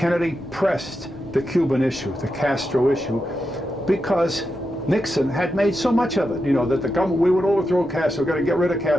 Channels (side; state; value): both; normal; correlation 0.87